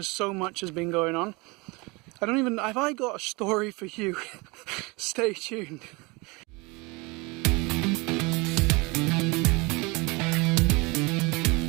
so much has been going on. Have I got a story for you? Stay tuned.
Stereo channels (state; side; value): quieter; left; 26.4 dB